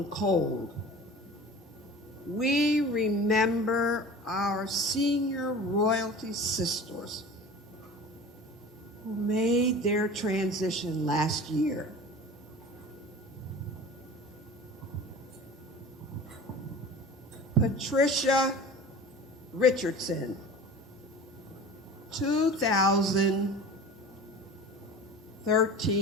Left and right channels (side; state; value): both; normal; correlation 0.38